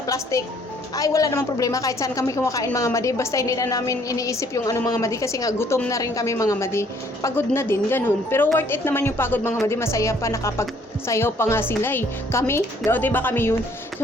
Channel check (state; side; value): normal; both; correlation 0.62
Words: Ay, wala namang problema kahit saan kami kumakain mga madi. Basta hindi na namin iniisip yung mga madi kasi nga gutom na rin kami mga madi. Pagod na din, ganun. Pero worth it naman yung pagod mga madi. Masaya pa, nakapagsayaw pa nga sila eh. Kami, diba kami yun?